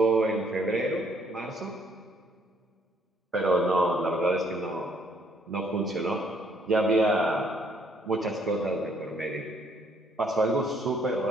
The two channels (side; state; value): both; normal; correlation 0.66